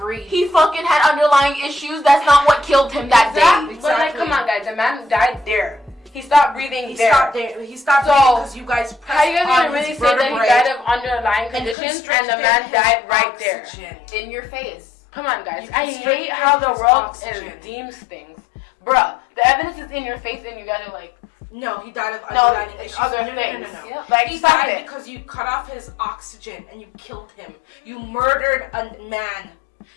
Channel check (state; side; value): drops out; right; at 11.8 s